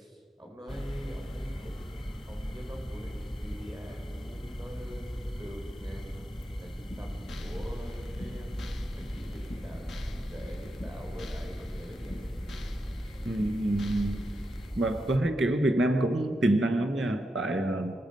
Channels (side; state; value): both; normal; correlation 0.86